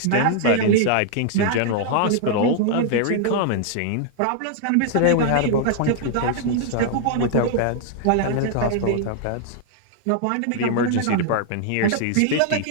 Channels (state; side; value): different; both; correlation -0.01